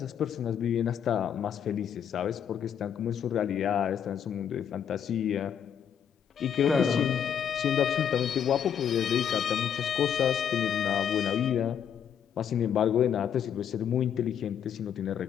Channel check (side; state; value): right; quieter; 8.5 dB